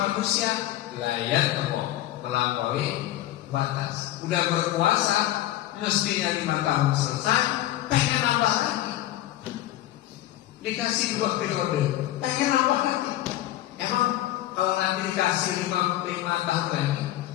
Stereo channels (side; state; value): right; quieter; 14.5 dB